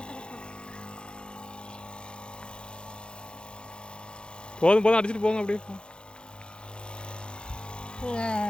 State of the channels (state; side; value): late; right; 0.051 ms